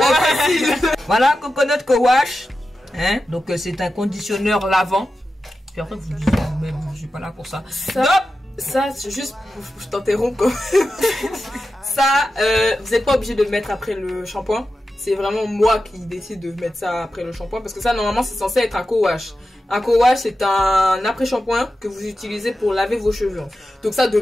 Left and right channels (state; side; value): normal; both; correlation 0.92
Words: Voilà, coconut co-wash. Hein? Donc c'est un conditionneur lavant. Puis après vous dites même je suis pas là pour ça. Ça c'est juste, je t'interromps quoi. Ça, vous n'êtes pas obligé de le mettre après le shampoing. C'est vraiment moi qui décide de mettre ça après le shampoing parce que ça normalement c'est censé être un co-wash. Un co-wash c'est un après-shampoing que vous utilisez pour laver vos cheveux. Donc ça de